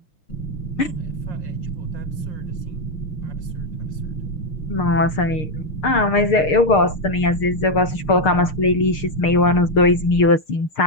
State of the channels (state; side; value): late; right; 6.6 ms